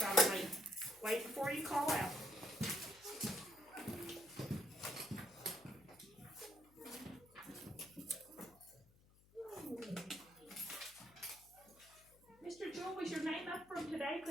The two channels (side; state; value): left; noise; hum, 27 dB below the sound